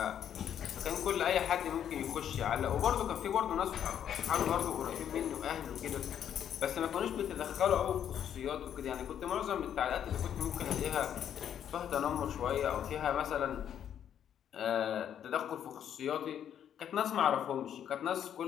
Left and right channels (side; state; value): right; quieter; 9.5 dB